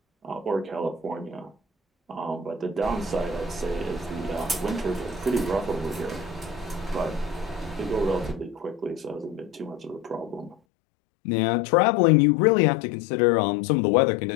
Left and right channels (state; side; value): drops out; right; at 10.6 s